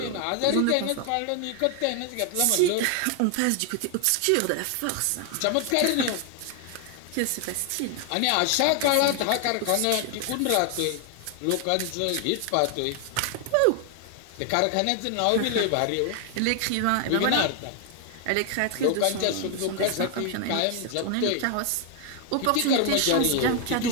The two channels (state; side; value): different; both; correlation 0.00